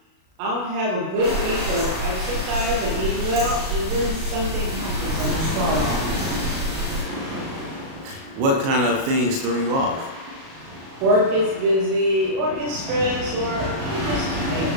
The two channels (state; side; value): late; left; 37 ms